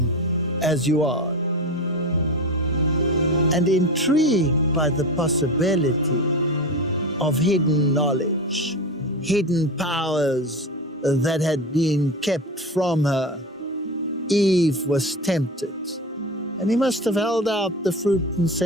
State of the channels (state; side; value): normal; both; correlation 0.25